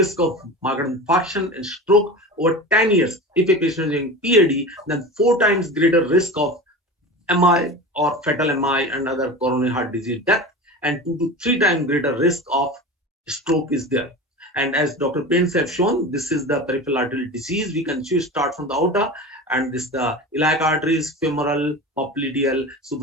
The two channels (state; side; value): normal; both; correlation 0.30